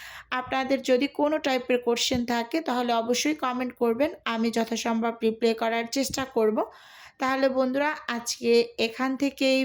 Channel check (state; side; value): identical; both; correlation 1.00